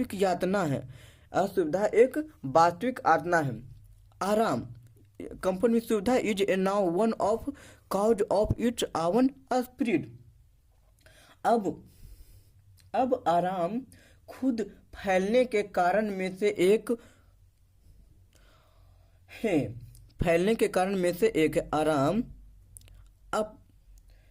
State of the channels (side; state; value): both; identical; correlation 1.00